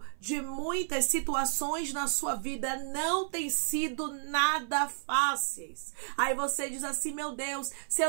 de muitas situações na sua vida não tem sido nada fáceis. Aí você diz assim: meu Deus, se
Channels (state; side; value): silent; left; 57 dB below the other